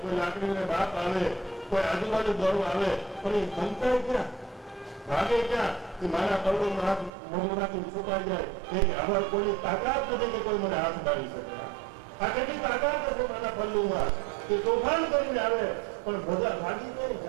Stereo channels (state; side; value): drops out; left; at 7.1 s